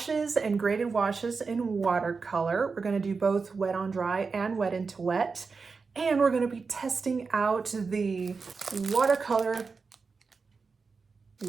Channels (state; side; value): quieter; left; 4.7 dB